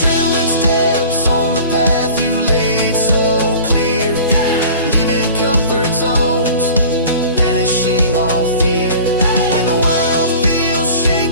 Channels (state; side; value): inverted; both; correlation -0.43